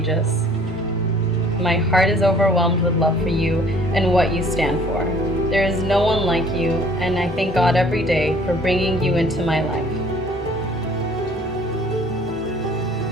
My heart is overwhelmed with love for you and what you stand for. There is no one like you, and I thank God every day for bringing you into my life.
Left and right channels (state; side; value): normal; both; correlation 0.54